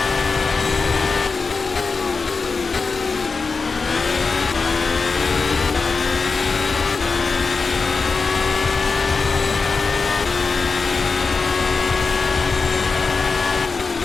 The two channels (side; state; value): right; quieter; 4.5 dB